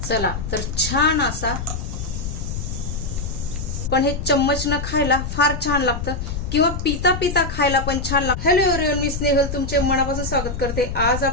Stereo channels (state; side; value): noise; left; rumble, 5 dB below the sound